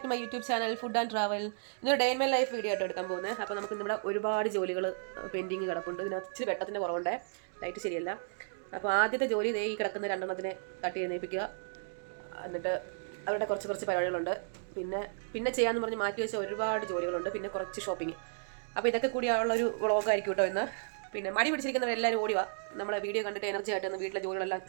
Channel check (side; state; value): left; silent; digital silence